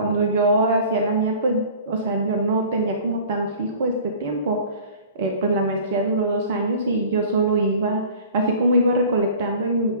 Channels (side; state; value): both; inverted; correlation -0.45